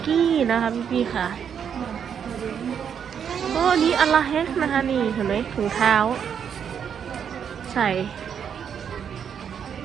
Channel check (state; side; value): quieter; left; 7.8 dB